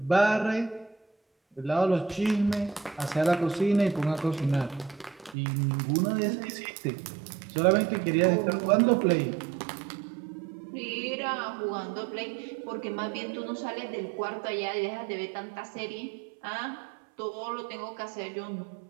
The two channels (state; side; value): drops out; left; at 5.4 s